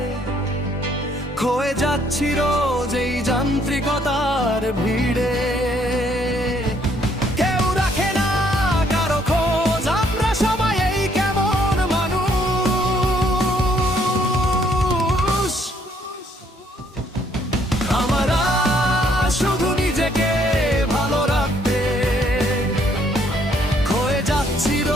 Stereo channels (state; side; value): normal; both; correlation 0.67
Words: খয়ে যাচ্ছি রোজ এই যান্ত্রিকতার ভিড়ে। কেউ রাখে না কারো খোঁজ, আমরা সবাই এই কেমন মানুষ। আমরা শুধু নিজেকে ভালো রাখতে খয়ে যাচ্ছি